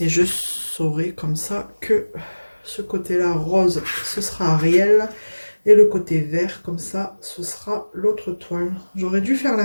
je saurai comme ça que... Ce côté-là, rose, ce sera Ariel. Et le côté vert, comme ça, ce sera l'autre toile. J'aurais dû faire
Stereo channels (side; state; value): both; inverted; correlation -1.00